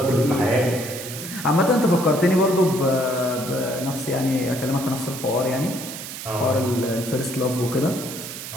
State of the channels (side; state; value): right; noise; hiss, 9 dB below the sound